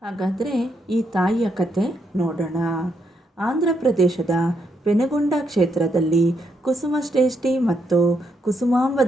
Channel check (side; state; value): both; normal; correlation 0.78